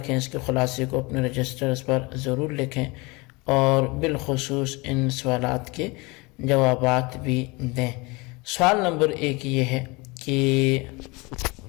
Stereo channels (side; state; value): right; quieter; 26.0 dB